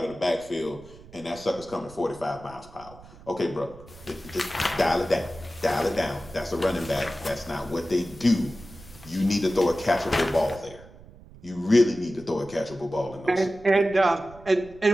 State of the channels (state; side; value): noise; right; rumble, 21 dB below the sound